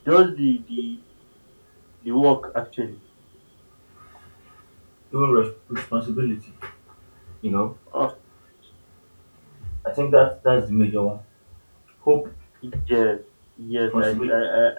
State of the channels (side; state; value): both; inverted; correlation -1.00